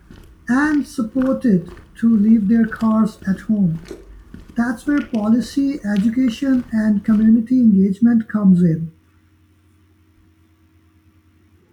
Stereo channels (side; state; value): both; identical; correlation 1.00